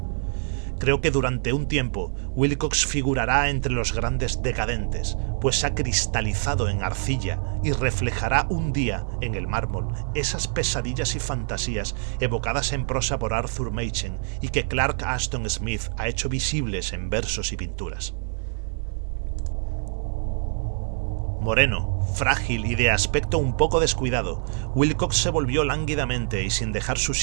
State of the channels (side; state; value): left; silent; 62 dB below the other